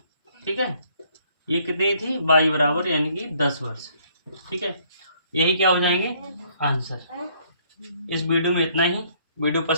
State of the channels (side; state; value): both; inverted; correlation -0.65